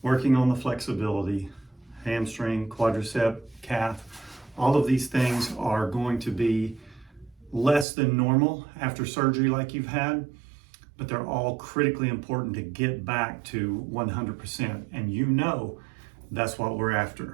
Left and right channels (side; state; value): left; drops out; at 7.9 s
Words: working on the flexibility, hamstring, quadricep, calf. All of these things are going to be less than normal after surgery like you've had, but they're all critically important to get back to 100%. And you know that's what we're